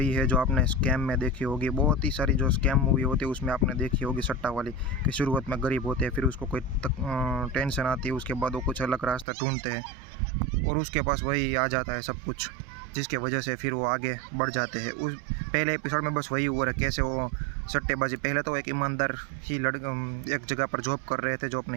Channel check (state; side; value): drops out; left; at 9.2 s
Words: है जो आपने स्कैम में देखी होगी। बहुत ही सारी जो स्कैम मूवी होती है उसमें आपने देखी होगी, सट्टा वाली, कि शुरुआत में गरीब होते हैं, फिर उसको कोई टेंशन आती है, उसके बाद वो कुछ अलग रास्ता ढूंढते हैं और उसके पास वही आ जाता है सब कुछ, जिसके वजह से फिर वो आगे बढ़ जाते हैं। उस पहले एपिसोड में बस वही हुआ है, कैसे वो सट्टेबाजी, पहले तो एक ईमानदार ही एक जगह पर जॉब कर रहे थे जो अपने